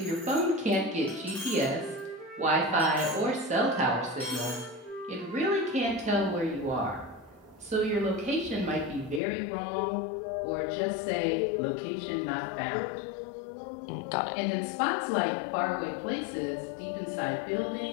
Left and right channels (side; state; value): right; drops out; at 9.2 s